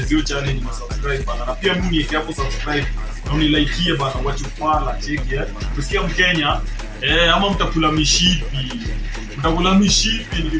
hiyo challenge na subscribe bana. Na pia mimi niweke hapo subscribe na unilike bana, wachufala. Cheki Usikia Mkenya ama mtakula mishipi.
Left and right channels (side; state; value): both; identical; correlation 1.00